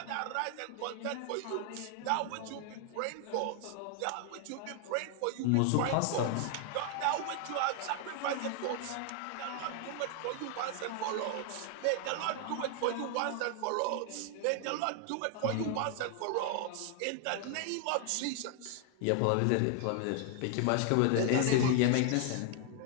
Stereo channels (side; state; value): both; different; correlation 0.00